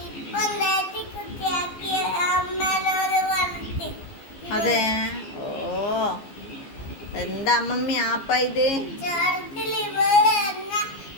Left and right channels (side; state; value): right; late; 15 ms